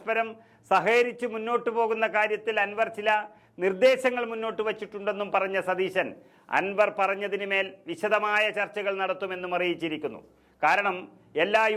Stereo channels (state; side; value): identical; both; correlation 1.00